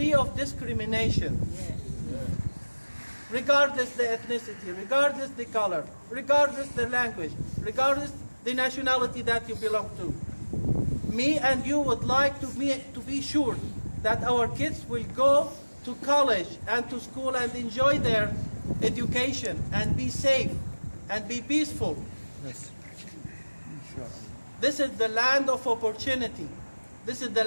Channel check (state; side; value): inverted; both; correlation -1.00